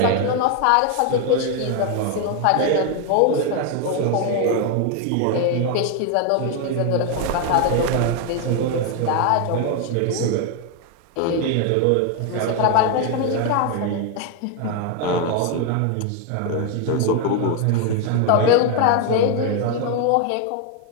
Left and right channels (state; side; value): different; both; correlation 0.01